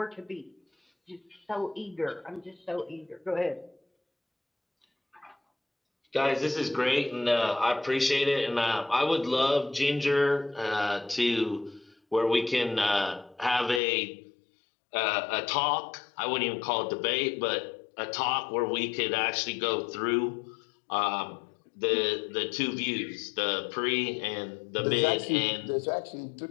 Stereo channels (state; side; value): drops out; right; at 13.8 s